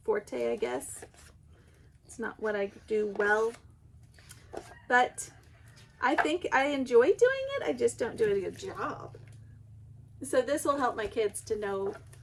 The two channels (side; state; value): both; identical; correlation 1.00